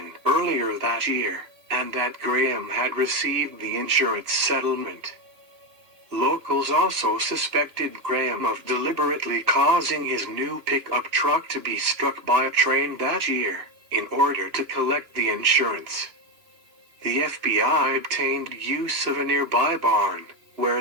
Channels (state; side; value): late; left; 2.9 ms